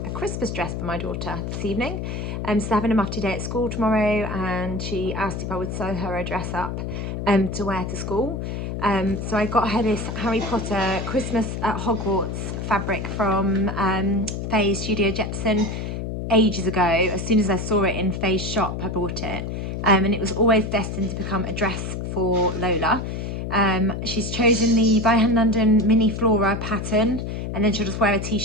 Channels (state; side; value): noise; left; hum, 4 dB below the sound